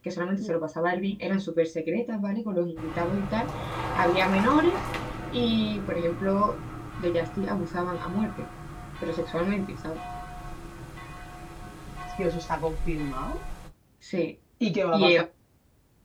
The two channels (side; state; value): both; identical; correlation 1.00